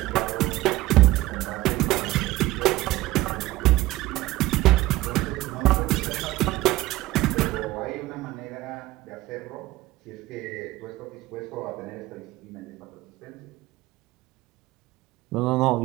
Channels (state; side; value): quieter; left; 17.5 dB